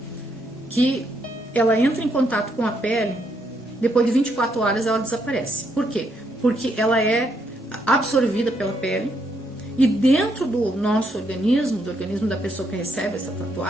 que ela entra em contato com a pele, depois de 24 horas ela desaparece. Por quê? Porque ela é absorvida pela pele e dentro do nosso organismo, do organismo da pessoa que recebe essa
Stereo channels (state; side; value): normal; both; correlation 0.75